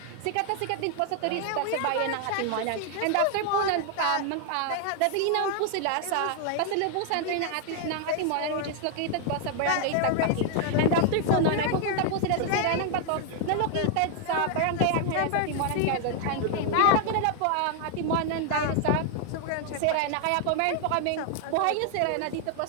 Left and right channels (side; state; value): both; different; correlation 0.00